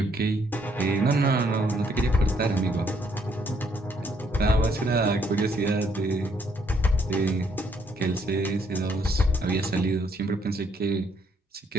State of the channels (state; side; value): normal; both; correlation 0.70